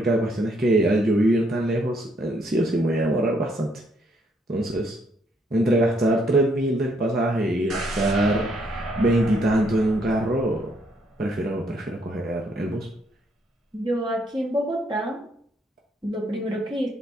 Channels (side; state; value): both; normal; correlation 0.71